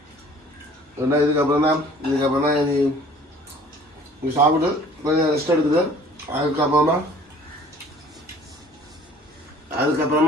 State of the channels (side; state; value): both; normal; correlation 0.52